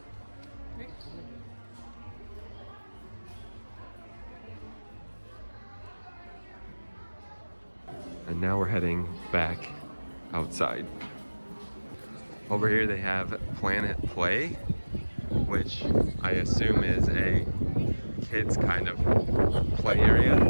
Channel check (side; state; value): both; inverted; correlation -1.00